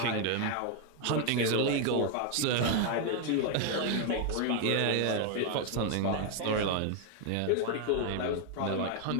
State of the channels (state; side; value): different; both; correlation 0.01